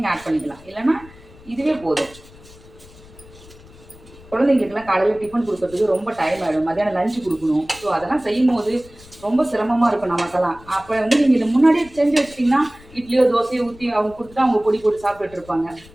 ஆட் பண்ணிக்கலாம், இல்லைன்னா இதுவே போதும். குழந்தைங்களுக்குலாம் காலையில் டிஃபன் கொடுக்கறதுக்கு ரொம்ப டைம் ஆகிடும், மத்தியானம் லஞ்சு கொடுக்கணும். ஸோ அதெல்லாம் செய்யும் போது ரொம்ப சிரமமாக இருக்கும் நமக்கெல்லாம். அப்போ வந்து நீங்கள் இதை முன்னாடியே செஞ்சு வச்சிட்டிங்கன்னா இட்லியோ தோசையோ ஊற்றி அவங்க கொடுத்துட்டு அவங்க பொடி போட்டு சாப்பிட்டுட்டு இருப்பாங்க.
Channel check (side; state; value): left; noise; rumble, 22 dB below the sound